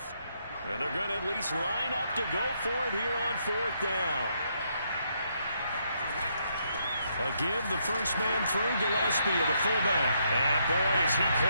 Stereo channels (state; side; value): inverted; both; correlation -0.75